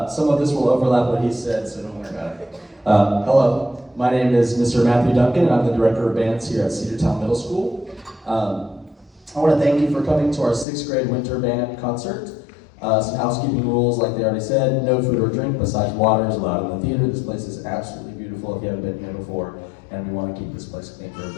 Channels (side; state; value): right; drops out; at 10.7 s